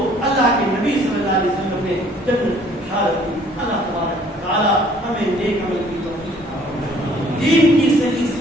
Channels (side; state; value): both; normal; correlation 0.58